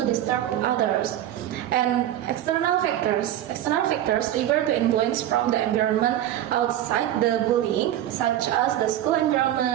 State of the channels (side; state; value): left; quieter; 12.3 dB